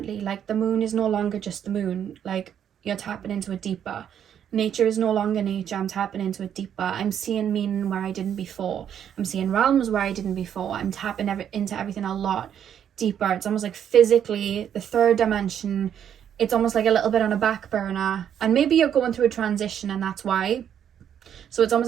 Like the moon is no longer just the moon. Like you're tapping into it deeper. Nature is no longer nature. I'm tapping into it deeper. I'm seeing meaning where I didn't before. I'm seeing realms where I didn't before. I'm tapping into everything a lot deeper. It's almost like physically, the 3rd dimension, it's almost like a little bit on a back burner. And maybe you're going through a transition, and that's why. So it's almost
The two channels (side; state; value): left; quieter; 9.2 dB